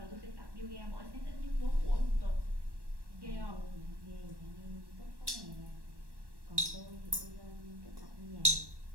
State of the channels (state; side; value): late; left; 1.1 ms